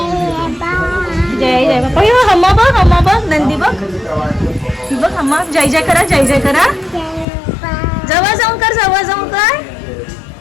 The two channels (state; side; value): drops out; right; at 7.2 s